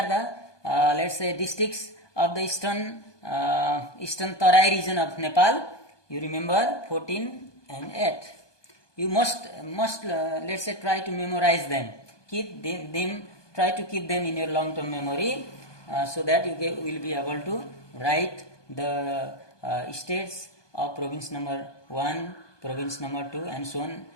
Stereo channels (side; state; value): right; late; 1.2 ms